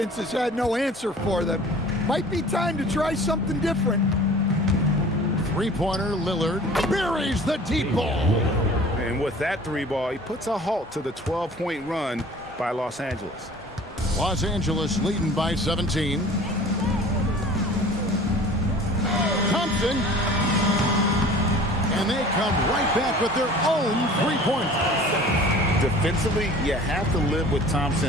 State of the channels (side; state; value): both; normal; correlation 0.45